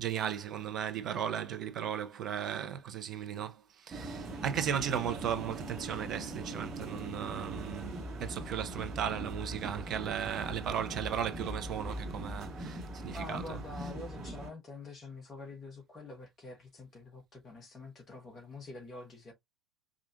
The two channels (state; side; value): quieter; left; 6.2 dB